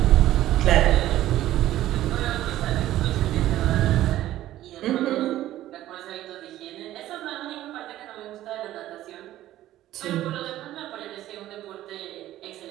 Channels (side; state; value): left; quieter; 14.0 dB